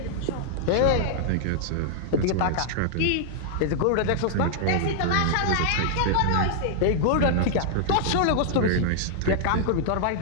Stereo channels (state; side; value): different; both; correlation -0.01